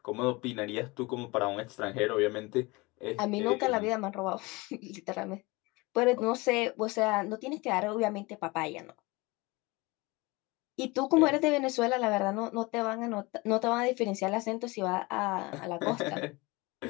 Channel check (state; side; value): quieter; right; 24.2 dB